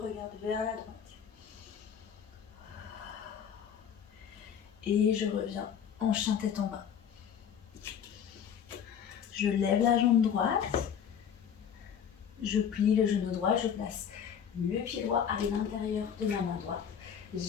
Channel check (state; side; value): quieter; right; 8.1 dB